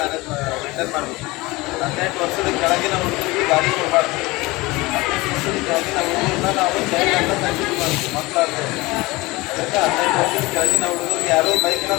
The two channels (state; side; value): quieter; right; 22.0 dB